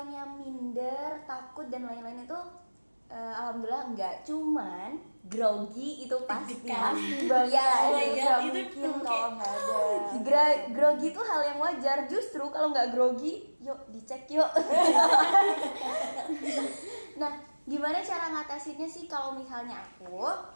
minder, takut dan lain-lain itu alhamdulillah enggak. Cuman grogi itu pasti. Pasti banget. Ya, Oh my God, itu mungkin kalau nggak ada. grogi itu hal yang wajar. Justru kalau nggak grogi, yuk dicek yuk. Nah, gimana cara ngatasinnya sih kalau misalnya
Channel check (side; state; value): both; inverted; correlation -1.00